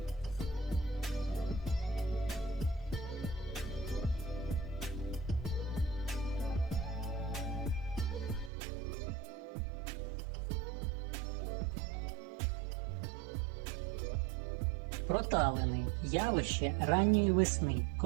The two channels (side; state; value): left; drops out; at 8.5 s